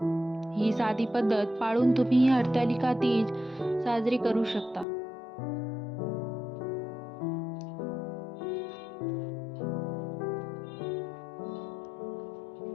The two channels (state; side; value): drops out; right; at 4.9 s